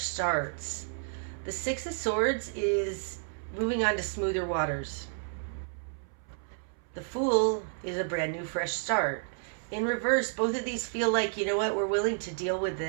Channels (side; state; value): left; silent; 57 dB below the other